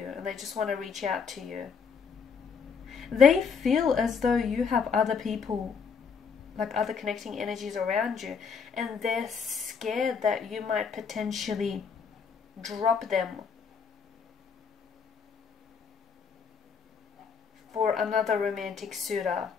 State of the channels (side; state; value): right; quieter; 5.9 dB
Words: and they just want to reach out to you. They feel as though you have other people, like other connecting energies around you, and they're scared that you might potentially drop them for another romantic suitor.